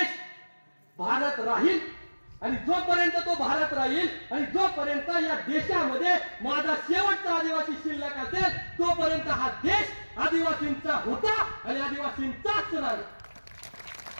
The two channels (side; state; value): both; inverted; correlation -1.00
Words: भारत राहील. आणि जोपर्यंत तो भारत राहील आणि जोपर्यंत या देशामध्ये माझा शेवटचा आदिवासी शिल्लक असेल तोपर्यंत हा देश आदिवासींचा होता आणि आदिवासींचाच राहील.